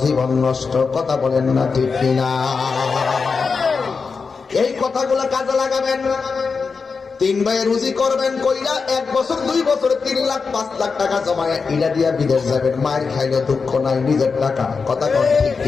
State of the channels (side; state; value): right; quieter; 5.0 dB